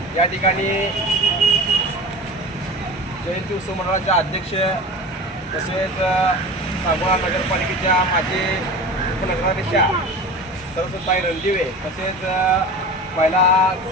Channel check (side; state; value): both; normal; correlation 0.34